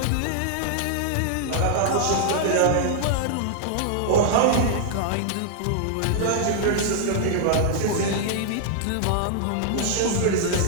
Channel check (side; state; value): both; different; correlation -0.01